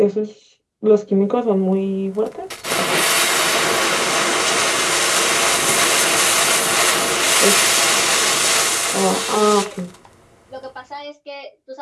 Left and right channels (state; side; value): identical; both; correlation 1.00